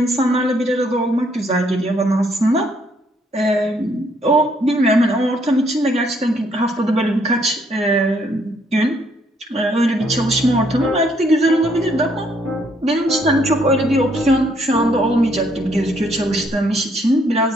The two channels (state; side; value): normal; both; correlation 0.69